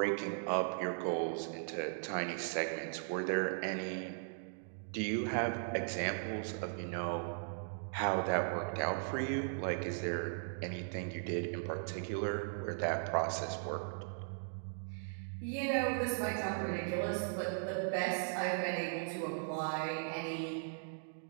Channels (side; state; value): left; silent; digital silence